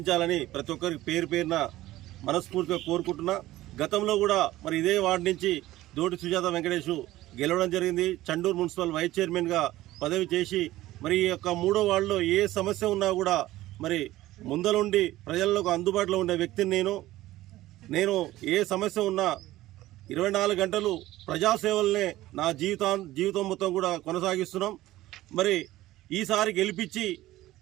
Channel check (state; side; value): quieter; left; 16.2 dB